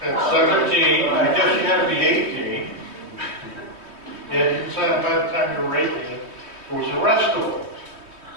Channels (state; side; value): late; left; 3.2 ms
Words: at 17, I guess you had to be 18. You didn't sign up by the time you were 18. It was arrestable.